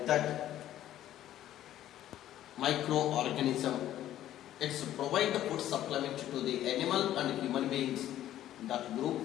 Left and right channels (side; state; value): right; quieter; 12.6 dB